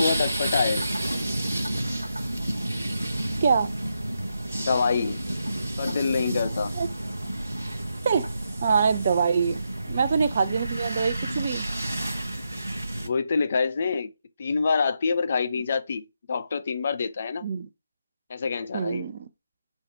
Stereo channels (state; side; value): inverted; both; correlation -0.83